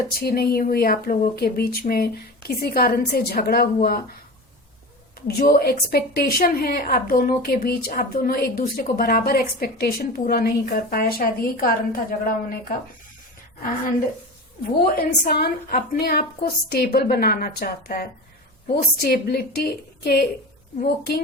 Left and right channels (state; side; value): normal; both; correlation 0.29